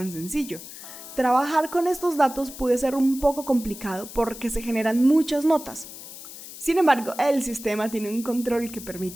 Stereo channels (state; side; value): noise; left; hiss, 14 dB below the sound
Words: sencillo. Trabajar con estos datos puede ser un poco complicado porque se generan muchas notas. Sin embargo, el sistema tiene un control que